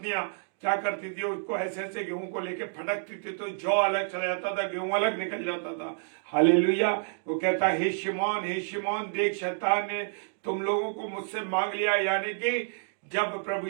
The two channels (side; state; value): left; silent; digital silence